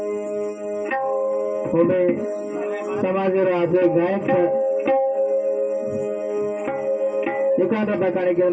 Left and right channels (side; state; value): both; identical; correlation 1.00